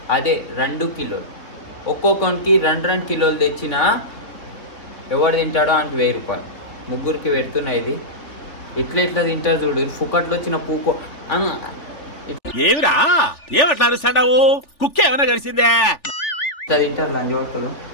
అదే 2 కిలోలు, ఒక్కొక్కరికి 2 కిలోలు తెచ్చిన ఎవడు తింటాడో అంటే 1000 రూపాయలు. ముగ్గురికి పెడుతున్నా. ఇది ఇట్లా తింటారు చూడు, ఫుకట్లో వచ్చిన పూకో ఏమిరా ఏమట్లా అరుస్తాడావు? కుక్క ఏమైనా కలిసిందే? ఇట్లా తింటారు లంచ్ పట్టుకోవడం.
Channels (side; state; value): right; late; 3.4 ms